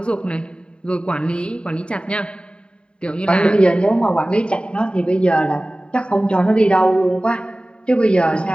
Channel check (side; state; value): right; late; 0.053 ms